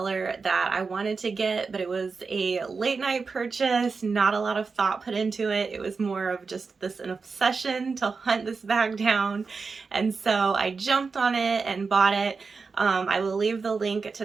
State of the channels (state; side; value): quieter; left; 4.7 dB